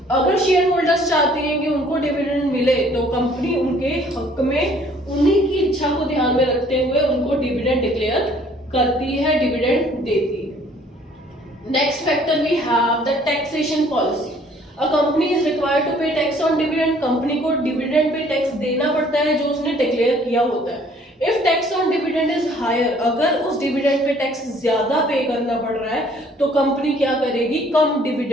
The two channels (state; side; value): normal; both; correlation 0.58